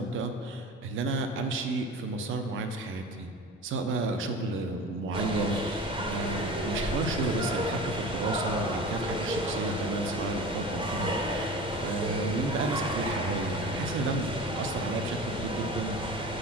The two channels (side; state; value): both; normal; correlation 0.35